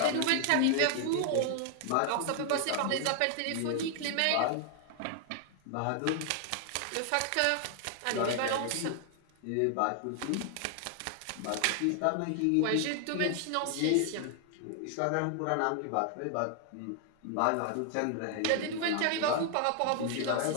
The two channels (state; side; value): different; both; correlation 0.00